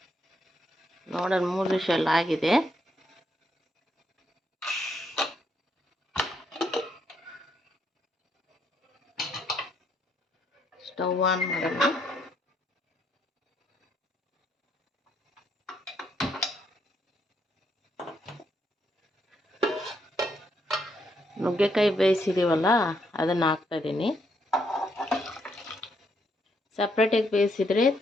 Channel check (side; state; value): both; normal; correlation 0.75